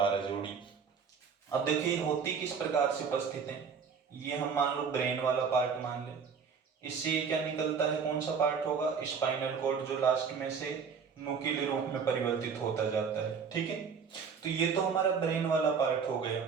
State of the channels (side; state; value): left; quieter; 6.1 dB